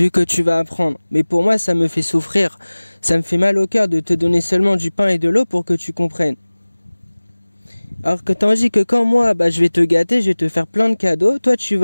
que tu vas apprendre. Mais pour moi, ça me fait souffrir. Ça me fait mal au cœur de te donner seulement du pain et de l'eau pour que tu comprennes. Alors que tandis que quand moi, je vais te gâter, je vais te faire plein de cadeaux, toi tu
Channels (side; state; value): both; inverted; correlation -1.00